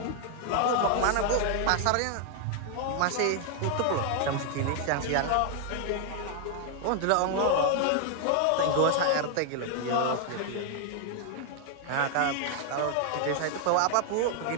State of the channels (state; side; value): different; both; correlation 0.00